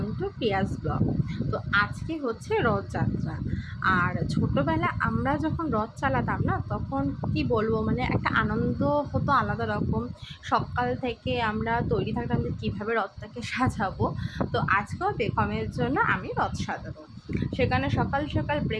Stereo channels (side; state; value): both; identical; correlation 1.00